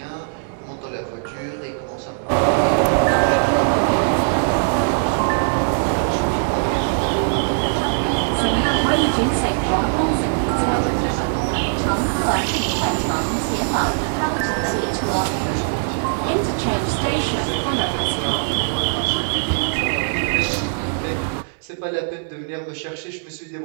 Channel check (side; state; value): left; silent; digital silence